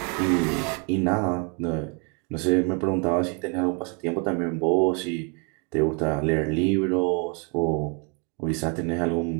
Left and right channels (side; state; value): left; quieter; 35.6 dB